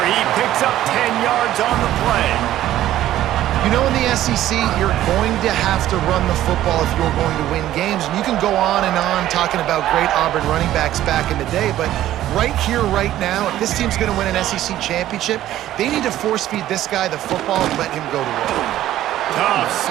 He picks up 10 yards on the play. You know, in the SEC, you're going to have to run the football if you're going to win games. And you can go on and on talking about great Auburn running backs back in the day, but right here, right now, if this team's going to win an SEC championship, they need to force-feed this guy the football and let him go to work. Tough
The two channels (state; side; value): quieter; left; 13.3 dB